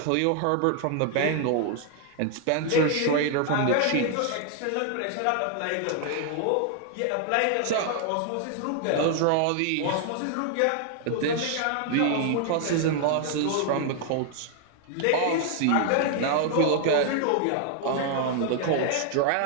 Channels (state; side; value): different; both; correlation 0.00